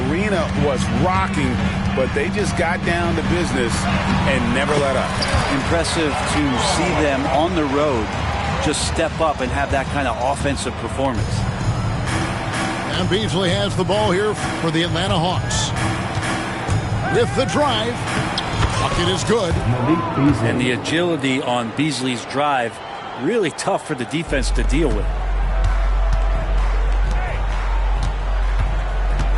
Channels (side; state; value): both; identical; correlation 1.00